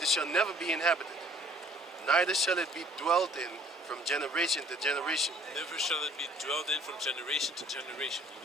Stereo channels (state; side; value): normal; both; correlation 0.56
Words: never be inhabited, neither shall it be dwelt in from generation to generation. Never shall it be dwelt in from generation to generation.